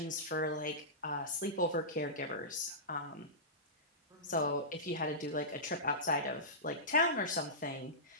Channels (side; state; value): both; normal; correlation -0.18